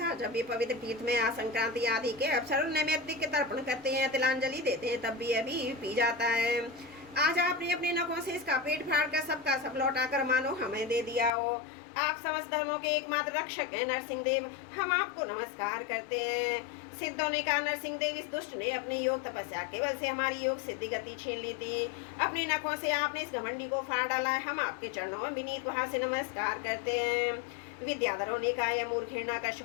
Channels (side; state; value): right; drops out; at 11.3 s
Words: जब भी पवित्र तीर्थ में संक्रांति आदि के अवसर नैमित्तिक के तर्पण करते हैं, तिलांजलि देते हैं, तब भी अभी पी जाता है। आज आपने अपने नखों से इसका पेट फाड़ कर सबका सब लौटा कर मानो हमें दे दिया हो। आप समस्त धर्मों के एकमात्र रक्षक हैं नरसिंह देव, हम आपको नमस्कार करते हैं। सिद्धों ने कहा नरसिंह देव, इस दुष्ट ने अपनी योग तपस्या केवल से हमारी योग सिद्धि गति छीन ली थी। अपनी नखों से आपने इस घमंडी को फाड़ डाला है, हम आपके चरणों में विनीत वहां से नमस्कार करते हैं। विद्याधरों ने कहा यह मूर्ख